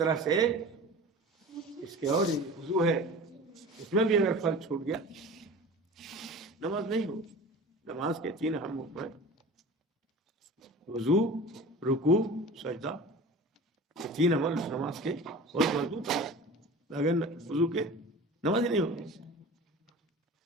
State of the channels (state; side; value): normal; both; correlation 0.37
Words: سے اس کے اور وضو ہے، اس میں بھی اگر فرض چھوٹ گیا نماز نہیں ہوگی. نماز کے 3 اہم حکم ہیں: وضو، رکوع، سجدہ. یہ 3 عمل نماز کے بہت مضبوط ہیں. اگر وضو کے نماز ہی نہیں ہوگی.